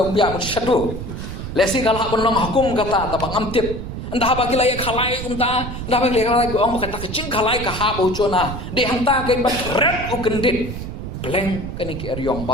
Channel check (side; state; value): right; noise; rumble, 7 dB below the sound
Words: biar satu. Lesi kalau pun nong hukum kata tapi ngamtip. Entah bagi lagi kalai entah bagi lagi orang kata kecing kalai kahap ucona. Di hantar ke bat red ukendit. Peleng kini ke eriong